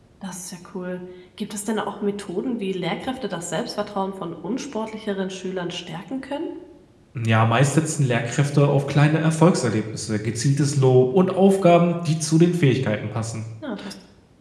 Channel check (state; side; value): identical; both; correlation 1.00